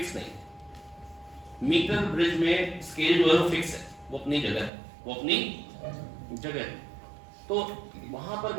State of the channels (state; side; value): drops out; left; at 4.7 s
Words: नहीं। मीटर ब्रिज में स्केल जो है वो फिक्स है, वो अपनी जगह है, वो अपनी जगह है। तो वहां पर